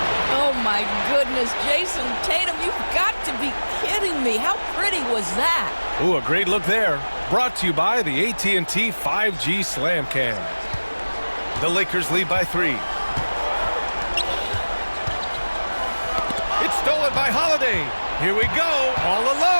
Oh, my goodness. Jason Tatum, you've got to be kidding me. How pretty was that? Ooh, a great look there. Brought to you by the AT&T 5G Slam Cam. The Lakers lead by 3. It's stolen by Holiday. Here we go, all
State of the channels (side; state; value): both; inverted; correlation -1.00